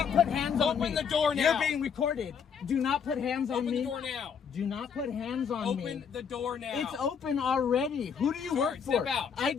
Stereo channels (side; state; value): right; quieter; 6.9 dB